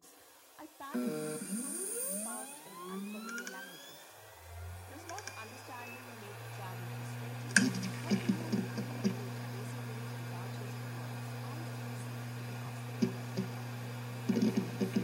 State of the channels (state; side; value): identical; both; correlation 1.00